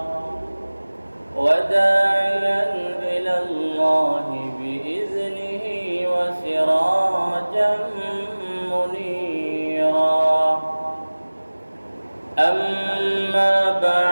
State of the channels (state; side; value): inverted; both; correlation -1.00